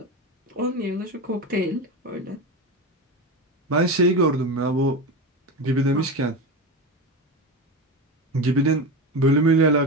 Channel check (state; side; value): normal; both; correlation 0.21